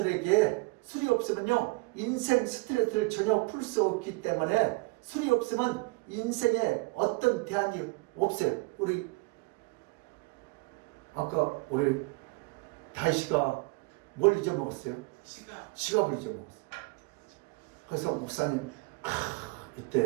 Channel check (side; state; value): left; quieter; 25.8 dB